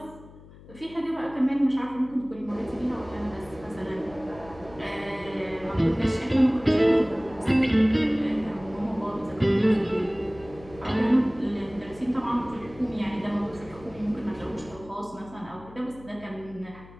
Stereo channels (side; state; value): left; noise; hum, 20 dB below the sound